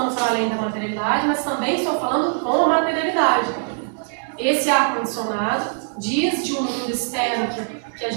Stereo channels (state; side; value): silent; left; digital silence